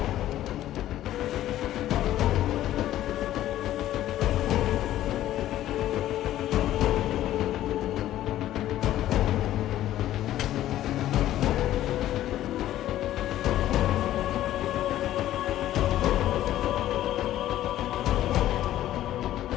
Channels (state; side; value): quieter; right; 13.3 dB